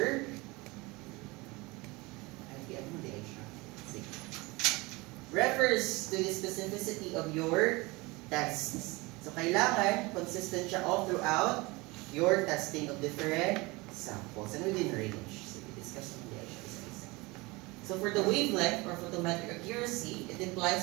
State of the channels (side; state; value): left; quieter; 23.9 dB